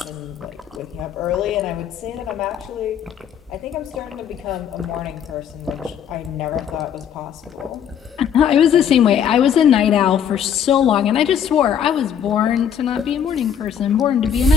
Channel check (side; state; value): right; quieter; 8.5 dB